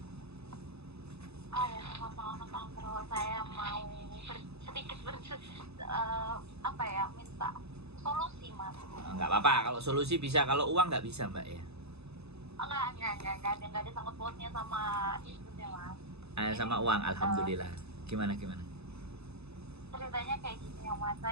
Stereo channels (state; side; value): late; left; 0.79 ms